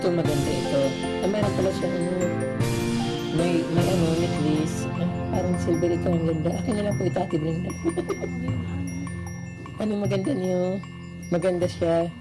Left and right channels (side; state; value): both; identical; correlation 1.00